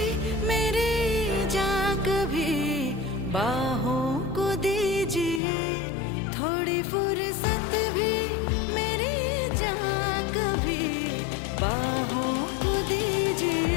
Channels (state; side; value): drops out; right; at 5.4 s